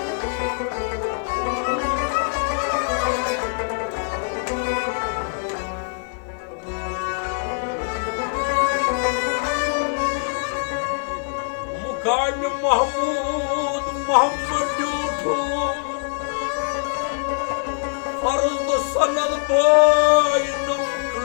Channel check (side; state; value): right; silent; digital silence